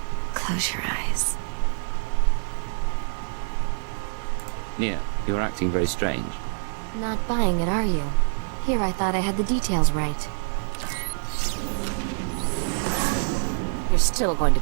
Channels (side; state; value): left; silent; digital silence